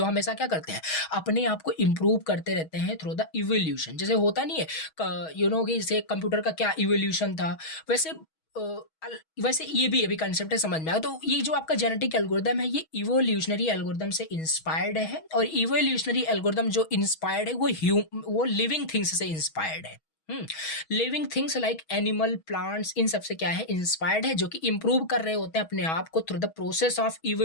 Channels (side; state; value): right; late; 6.3 ms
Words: हमेशा क्या करते हैं, अपने आप को इंप्रूव करते रहते हैं थ्रू द इवोल्यूशन। जैसे होता नहीं है कि जैसे कंप्यूटर का क्या इवोल्यूशन था, वैसे वैसे ये भी कंसेप्ट है, समझ में आया। तो ये जो आपका जेनेटिक एल्गोरिथम है ये इवोल्यूशनरी एल्गोरिथम से इंस्पायर्ड है। और इवोल्यूशनरी एल्गोरिथम जो इंस्पायर्ड है वो लिविंग थिंग्स से इंस्पायर्ड है। Living things like animal, plants, इन सब से क्या है, इंस्पायर्ड है, जो कि इंप्रूव कर रहे होते हैं अपने आप को through the process of